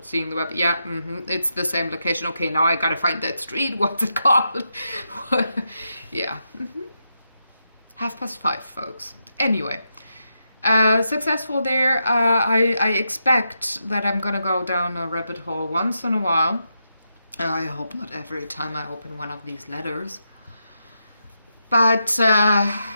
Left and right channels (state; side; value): inverted; both; correlation -0.85